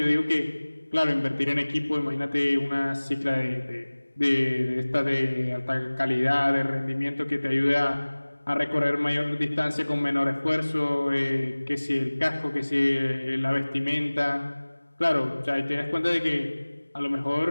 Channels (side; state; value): both; inverted; correlation -1.00